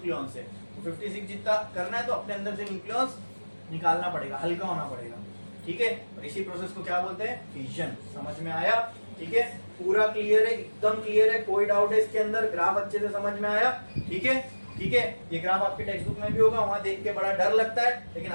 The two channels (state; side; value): inverted; both; correlation -1.00